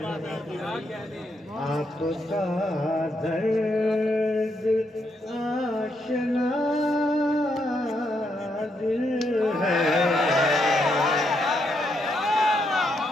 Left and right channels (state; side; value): normal; both; correlation 0.78